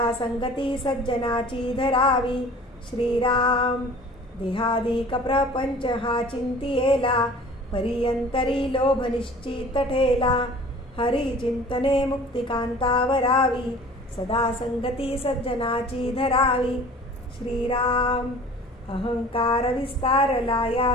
संगती सज्जनाची धरावी. श्रीराम. देहादिक प्रपंच हा चिंतियेला परियंतरी लोभ निश्चित ठेला. हरी चिंतने मुक्तिकांतावरावी सदा संगती सज्जनाची धरावी. श्रीराम. अहंकार विस्तारला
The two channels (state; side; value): normal; both; correlation 0.45